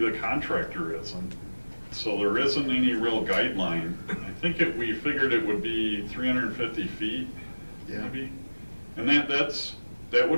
contractor is. And so there isn't any real guideline. I think we figured it would be 350 feet, maybe. And that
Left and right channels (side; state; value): both; inverted; correlation -1.00